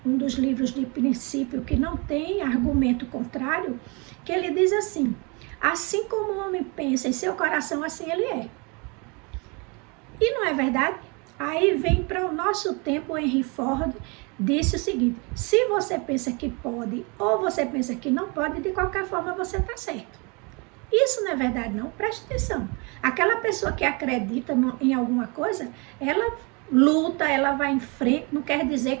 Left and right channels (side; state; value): left; quieter; 30.6 dB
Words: dos livros de princípio que não tem argumento contrário, que ele diz assim como o homem pensa em seu coração, assim ele é. E não é verdade? Aí vem para o nosso tempo, o Henry Ford disse o seguinte, se você pensa que pode ou você pensa que não pode, de qualquer forma você está certo. Isso não é verdade não, preste atenção. Aquela pessoa que acredita em alguma coisa, ela luta, ela vai em frente, não quer dizer